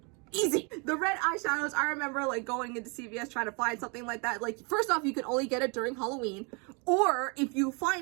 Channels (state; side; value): quieter; left; 33.0 dB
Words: easy. The red eyeshadows, I remember like going into CVS trying to find something like that. Like, first off, you could only get it during Halloween, or if you